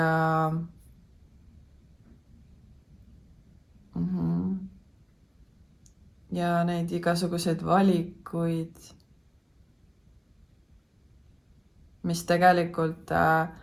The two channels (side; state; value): both; identical; correlation 1.00